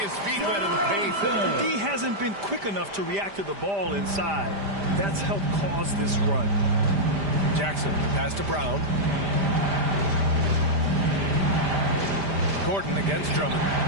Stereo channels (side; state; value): left; late; 5.0 ms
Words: feet wet in the paint. D hasn't been quick enough to react to the ball inside. That's helped cause this run. Jackson, pass to Brown. Gordon against Drummond.